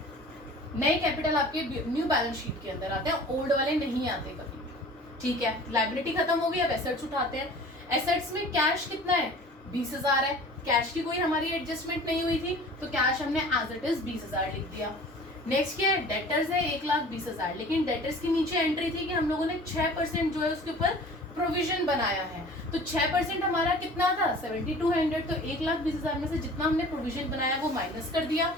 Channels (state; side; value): normal; both; correlation 0.44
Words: नए कैपिटल आपके न्यू बैलेंस शीट के अंदर आते हैं, ओल्ड वाले नहीं आते कभी। ठीक है, लायबिलिटी खत्म हो गई, अब एसेट्स उठाते हैं। एसेट्स में कैश कितना है, 20,000 है। कैश की कोई हमारी एडजस्टमेंट नहीं हुई थी, तो कैश हमने एज इट इज 20,000 लिख दिया। नेक्स्ट क्या है, डेटर्स है 1,20,000। लेकिन डेटर्स के नीचे एंट्री थी कि हम लोगों ने 6% जो है उसके ऊपर प्रोविजन बनाया है। तो 6% हमारा कितना था, 7,200। तो 1,20,000 में से जितना हमने प्रोविजन बनाया वो माइनस कर दिया,